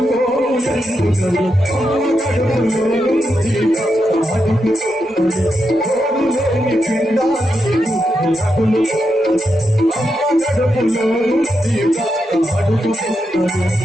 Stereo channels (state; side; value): normal; both; correlation 0.85